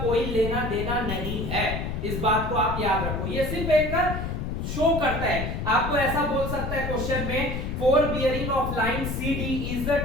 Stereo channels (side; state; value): left; noise; rumble, 3 dB below the sound